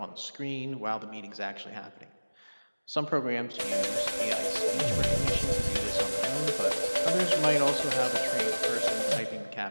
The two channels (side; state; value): both; inverted; correlation -1.00